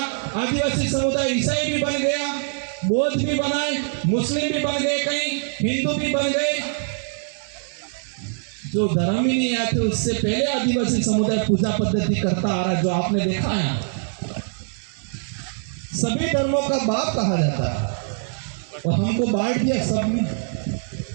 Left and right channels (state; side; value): silent; left; 63 dB below the other